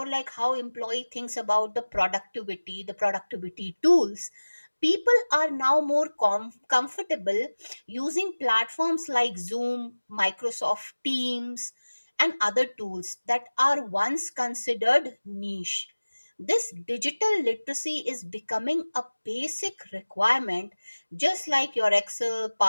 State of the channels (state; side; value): inverted; both; correlation -1.00